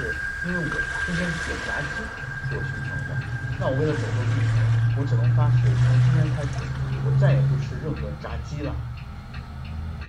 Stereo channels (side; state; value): both; identical; correlation 1.00